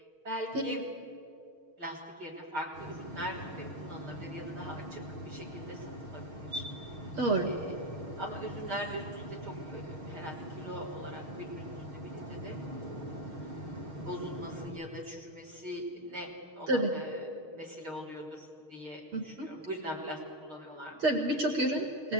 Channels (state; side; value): late; left; 6.4 ms